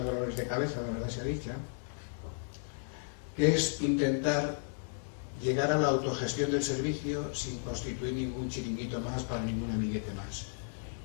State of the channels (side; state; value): right; silent; 55 dB below the other